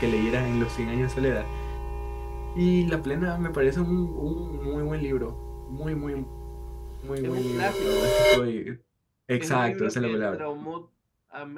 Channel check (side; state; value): both; identical; correlation 1.00